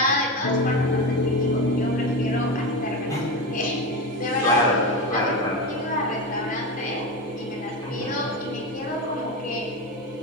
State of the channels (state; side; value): normal; both; correlation 0.19